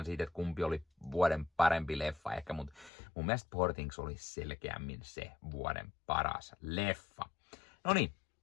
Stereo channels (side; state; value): right; drops out; at 2.9 s